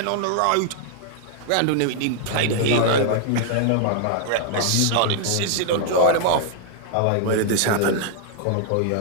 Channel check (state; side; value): different; both; correlation 0.00